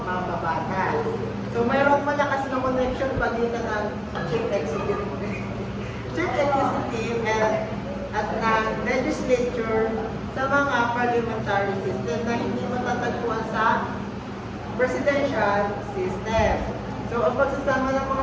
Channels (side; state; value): both; identical; correlation 1.00